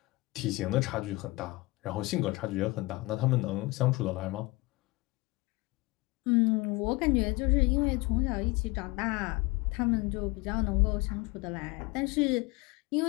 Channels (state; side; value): quieter; right; 22.9 dB